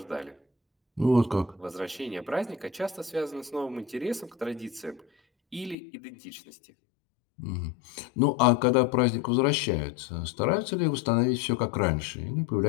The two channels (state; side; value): drops out; right; at 5.8 s